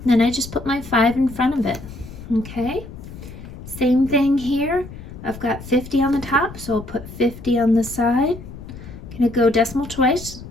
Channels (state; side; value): noise; left; rumble, 14 dB below the sound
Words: Then I just put my 5 in front of it. Okay, same thing here. I've got 50 on the top, so I'll put 50 on the side. Gonna go decimal twice,